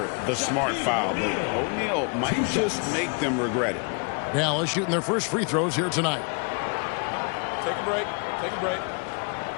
the smart foul, but O'Neal might just make them regret it. Dallas shooting their first free throws here tonight. Take a break. Take a break.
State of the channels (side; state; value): right; quieter; 36.5 dB